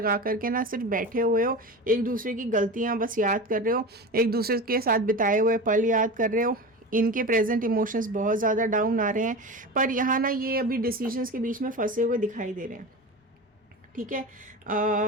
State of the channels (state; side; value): normal; both; correlation 0.28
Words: करके ना सिर्फ बैठे हुए हो, एक दूसरे की गलतियां बस याद कर रहे हो, एक दूसरे के साथ बिताए हुए पल याद कर रहे हो। इनके प्रेजेंट इमोशंस बहुत ज़्यादा डाउन आ रहे हैं, पर यहाँ ना ये अभी डिसीजंस के बीच में फंसे हुए दिखाई दे रहे हैं, ठीक है।